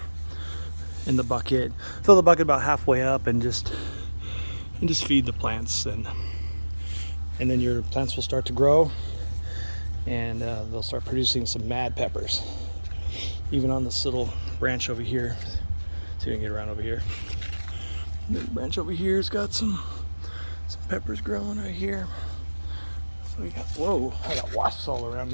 in the bucket. Fill the bucket about halfway up, and just feed the plants, and then your plants will start to grow, and they'll start producing some mad peppers. Even on this little branch over here. See if we can get around over here. The branch over here has got some peppers growing right here. So we got, whoa, I got wasps all around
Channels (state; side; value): inverted; both; correlation -1.00